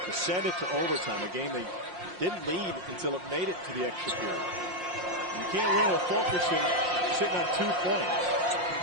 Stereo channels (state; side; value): late; left; 5.6 ms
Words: to send it to overtime, a game they didn't lead until it made it to the extra period. You can't win with Fulkerson sitting on 2